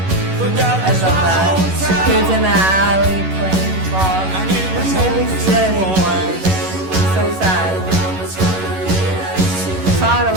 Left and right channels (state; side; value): late; left; 11 ms